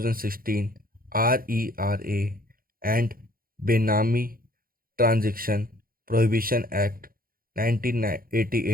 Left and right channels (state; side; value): late; left; 0.42 ms